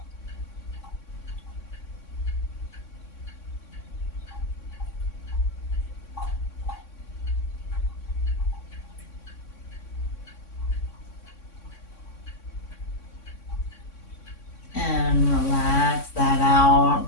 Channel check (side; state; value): right; late; 3.6 ms